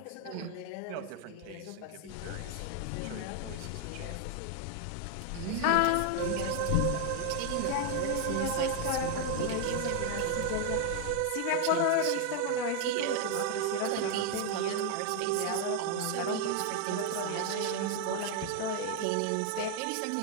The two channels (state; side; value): different; both; correlation 0.00